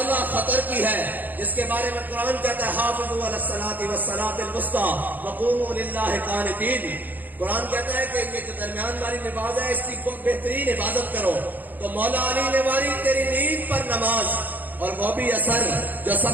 خطر کی ہے، جس کے بارے میں قرآن کہتا ہے حافظوا علی الصلاۃ والصلاۃ الوسطیٰ وقوموا للہ قانتین. قرآن کہتا ہے کہ یہ جو درمیان والی نماز ہے اس کی بہترین حفاظت کرو. تو مولا علی نے ماری تیری نیند پر نماز، اور وہ بھی اثر جو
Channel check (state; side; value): late; left; 0.085 ms